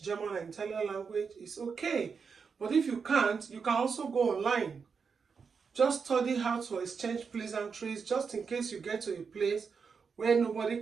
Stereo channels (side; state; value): left; quieter; 5.7 dB